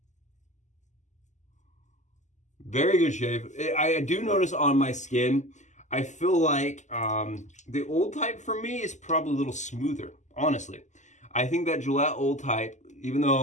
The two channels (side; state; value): right; late; 0.34 ms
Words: Very good shave. I do notice on my skin, I feel like the old type for me is probably a little smoother, honestly. I think that Gillette old type, even